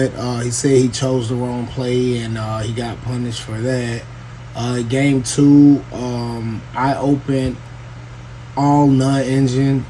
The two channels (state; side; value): identical; both; correlation 1.00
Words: He said he chose the wrong play, and he got punished for that. Game two, I opened all non-engine